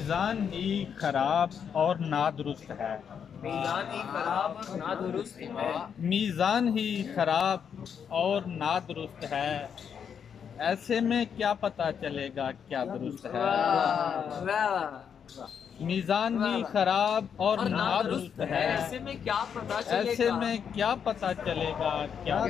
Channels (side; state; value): right; quieter; 7.5 dB